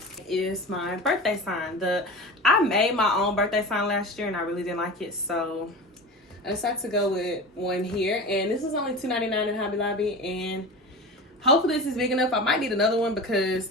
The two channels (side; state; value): both; normal; correlation 0.31